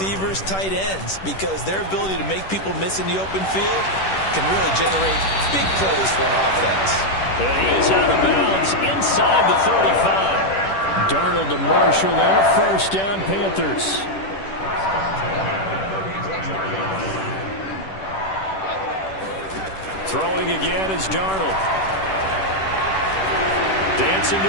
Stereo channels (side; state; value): right; late; 10 ms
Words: tight ends, because their ability to make people miss in the open field can really generate big plays for an offense. And he is out of bounds inside the 35. Darnold to Marshall there. 1st down, Panthers. Throwing again is Darnold. Dancing to